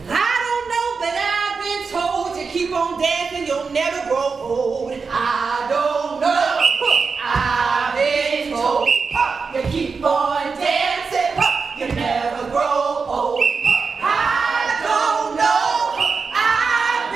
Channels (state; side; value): quieter; left; 5.0 dB